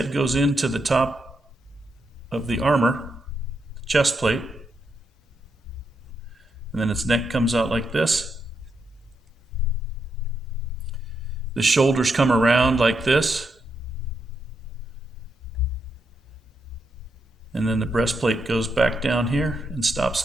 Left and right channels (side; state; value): both; normal; correlation 0.82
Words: goes into the top of the armor, the chest plate, and then its neck comes out like this. The shoulders come around like this. And then the breastplate goes back down here and stops